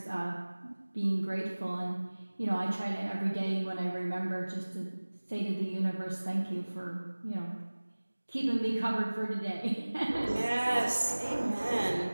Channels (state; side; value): inverted; both; correlation -1.00